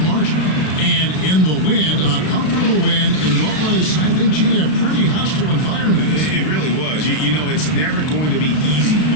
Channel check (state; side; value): late; right; 33 ms